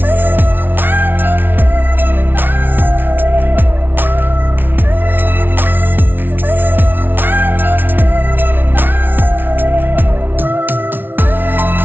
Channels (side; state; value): left; late; 0.096 ms